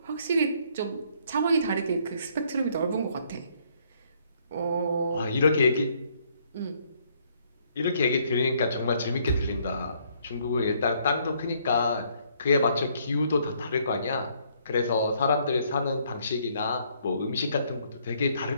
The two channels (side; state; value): both; inverted; correlation -0.67